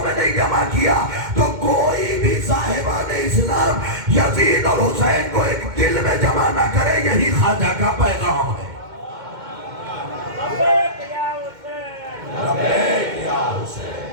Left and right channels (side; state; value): left; late; 2.1 ms